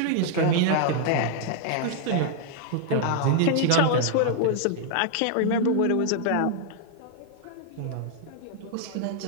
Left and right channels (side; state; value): both; different; correlation 0.00